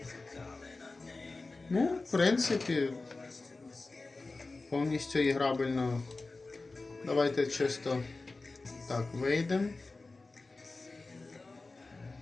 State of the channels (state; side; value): quieter; right; 3.5 dB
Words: Ну, в принципі, повністю іграбельно. Давайте чисто так вийдемо.